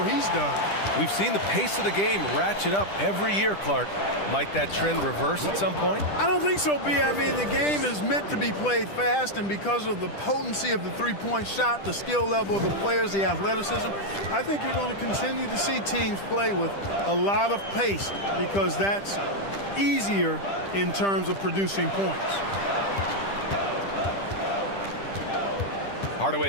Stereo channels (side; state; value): right; late; 10 ms